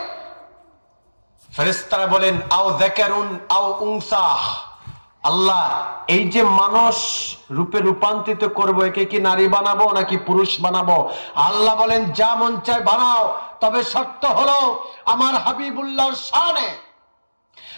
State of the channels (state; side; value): inverted; both; correlation -1.00